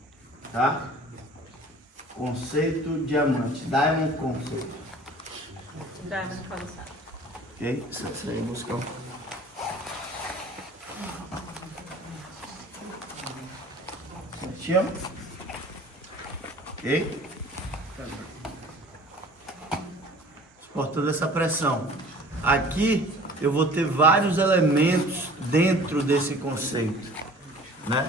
Tá? Conceito diamante. Diamond conceito. Diamond concept. Ok? Isso aí, buscar. Certinho? Ok? Suportando essa pressão. Aqui eu vou ter vários elementos dentro desse conceito, né?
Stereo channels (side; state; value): both; normal; correlation 0.47